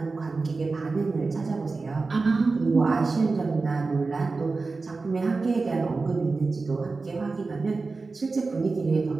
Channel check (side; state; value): left; quieter; 3.9 dB